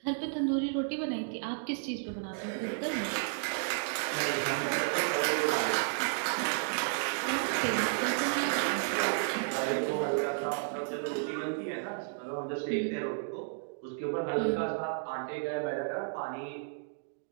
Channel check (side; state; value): left; silent; digital silence